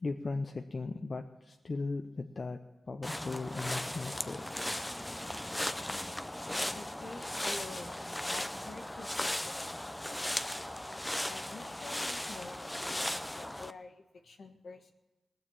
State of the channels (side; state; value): both; normal; correlation 0.98